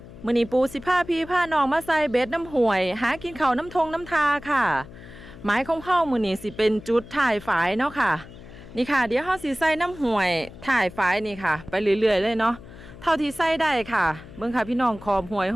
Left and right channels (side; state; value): left; noise; hum, 17 dB below the sound